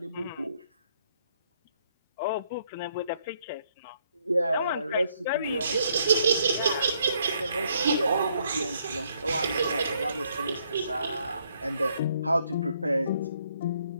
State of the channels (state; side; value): inverted; both; correlation -0.70